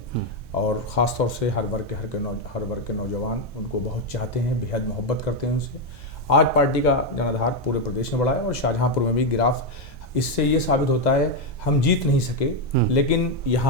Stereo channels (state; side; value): late; left; 1.2 ms